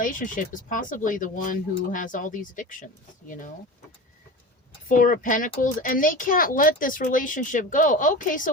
is possibly the one who has all these addictions, you know. Four of Pentacles, and they can't let this relationship go. Okay, so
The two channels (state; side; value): normal; both; correlation 0.31